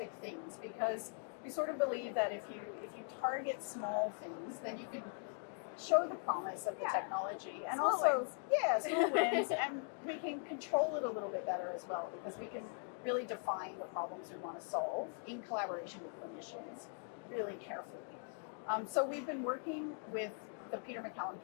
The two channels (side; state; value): right; silent; 51 dB below the other